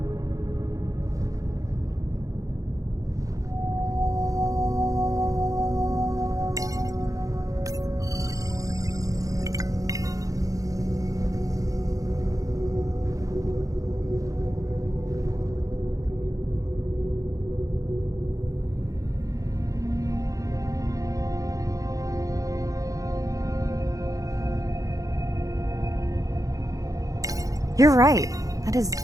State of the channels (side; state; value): left; late; 0.16 ms